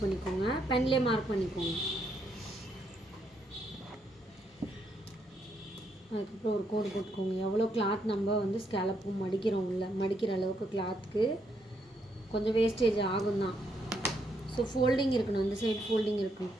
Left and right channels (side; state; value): both; normal; correlation 0.76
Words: பென்லேயே மார்க் பண்ணிக்கோங்க. அதுக்கப்புறம் ஒரு கோடு போட்டுக்கோங்க. எவ்வளோ கிளாத் நம்ம வந்து ஸ்கேலப்பும் மடிக்கிறோம், இல்லை மடிக்கிற அளவுக்கு கிளாத்துக்கு கொஞ்சம் வேஸ்டேஜ் ஆகும் தான். ஸோ ஃபோல்டிங் இருக்கணும், இந்த சைடு ஃபோல்டிங் இருக்கணும்.